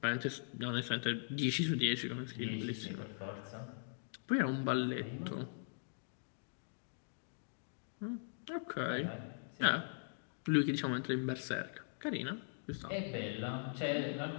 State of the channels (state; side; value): silent; right; digital silence